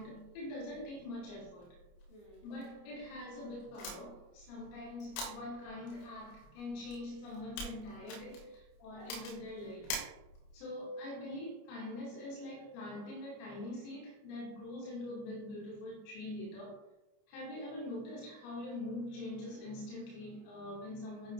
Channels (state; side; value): late; right; 29 ms